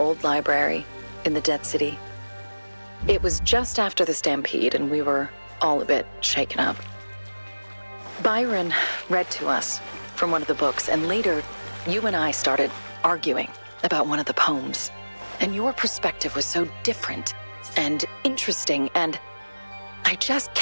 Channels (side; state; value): both; inverted; correlation -1.00